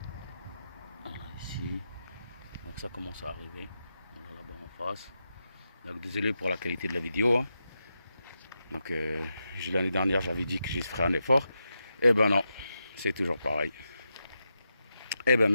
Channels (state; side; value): inverted; both; correlation -0.87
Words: Voilà ici. Donc ça commence à arriver. On a là-bas en face. Donc désolé pour la qualité de la vidéo, hein. Donc l'année dernière j'avais dit que je ferais un effort. Eh ben non, c'est toujours pareil. Eh ben